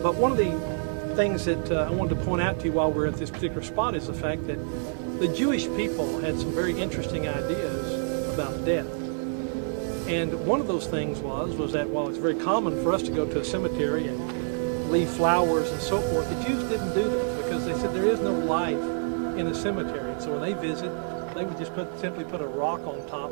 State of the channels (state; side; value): silent; left; digital silence